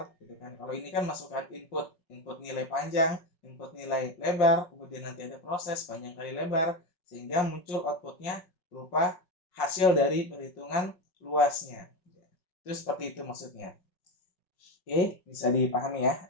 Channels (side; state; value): right; late; 5.4 ms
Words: gitu kan. Kalau ini kan masukkan input nilai panjang, input nilai lebar, kemudian nanti ada proses panjang kali lebar, sehingga muncul outputnya berupa hasil dari perhitungan luasnya. Itu seperti itu maksudnya. Oke, bisa dipahami ya.